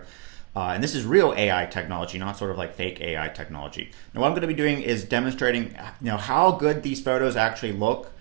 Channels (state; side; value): quieter; left; 24.0 dB